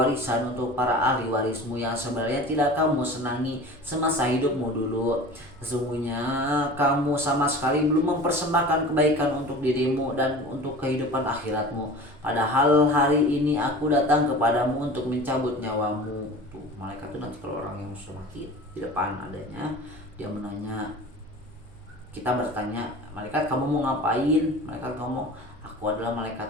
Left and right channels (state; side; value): noise; right; hum, 24 dB below the sound